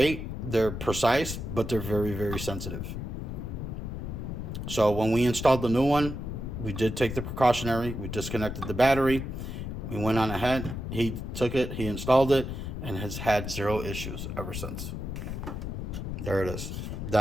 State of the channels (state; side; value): noise; left; rumble, 5 dB below the sound